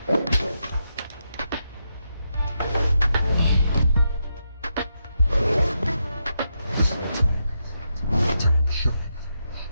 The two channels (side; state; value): both; inverted; correlation -0.83